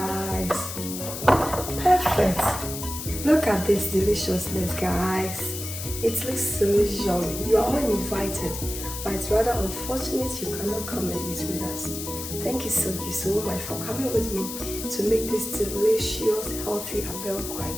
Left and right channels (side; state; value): left; noise; hiss, 7 dB below the sound